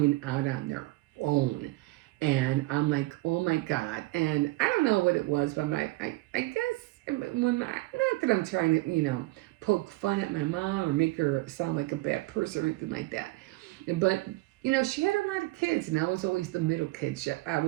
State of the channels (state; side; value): quieter; left; 20.5 dB